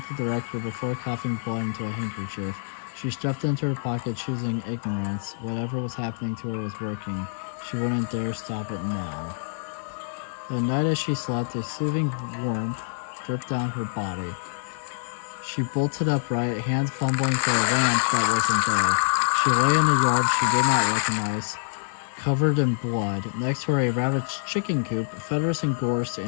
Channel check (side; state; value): right; silent; 61 dB below the other